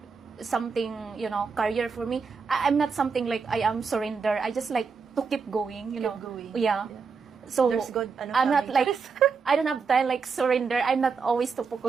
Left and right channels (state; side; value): quieter; left; 5.3 dB